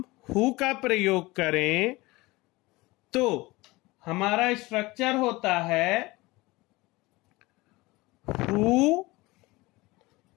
हु का प्रयोग करें तो हमारा स्ट्रक्चर होता है हु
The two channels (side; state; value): right; quieter; 21.7 dB